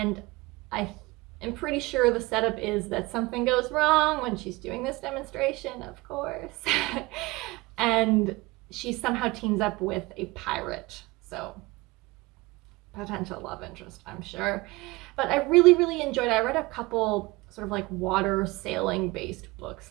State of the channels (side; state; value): left; quieter; 22.5 dB